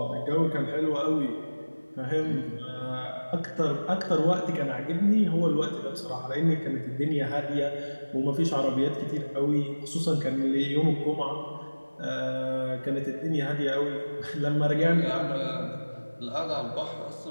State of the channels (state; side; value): inverted; both; correlation -1.00